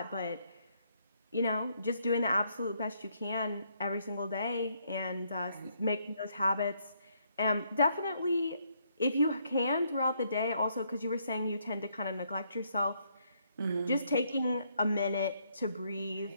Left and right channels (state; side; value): inverted; both; correlation -0.72